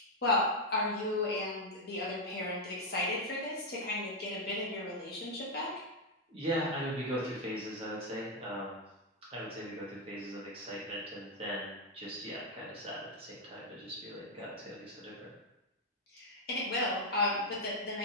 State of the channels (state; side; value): normal; both; correlation 0.01